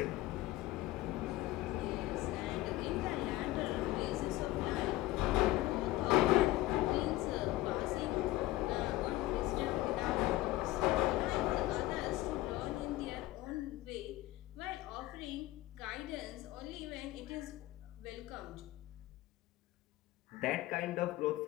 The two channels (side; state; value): right; quieter; 17.5 dB